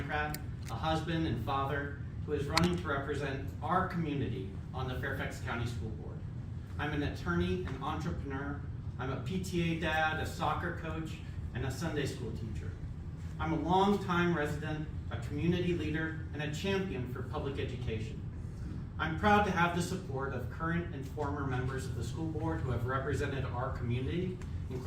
a husband and father who is running to represent our community on the Fairfax County School Board. I'm an attorney and entrepreneur. I'm a PTA dad, a soccer coach, and a Sunday school teacher. I'm a longtime resident, a community leader, and a champion for public education. I'm proud to have the support of current and former members of the school board who have represented our community,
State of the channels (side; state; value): both; identical; correlation 1.00